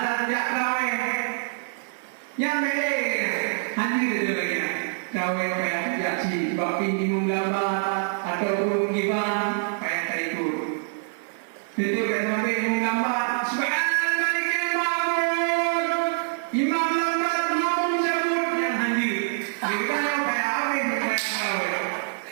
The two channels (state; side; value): silent; left; 61 dB below the other